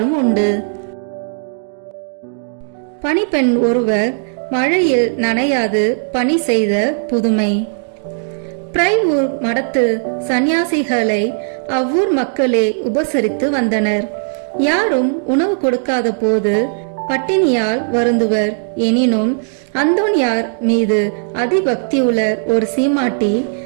உண்டு. பணிப்பெண் ஒருவர் மழையில் நனையாது பணி செய்த புதுமை. பிரைவூர் மடத்து சந்நியாசிகளை அவ்வூர் மக்களே உபசரித்து வந்தனர். யாரும் உணவு கொடுக்காத போது பட்டினியால் வருந்துவர். எனினும் அந்தோனியார் மீது அதிபக்தியுள்ள ஒரு சீமாட்டி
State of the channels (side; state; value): left; silent; digital silence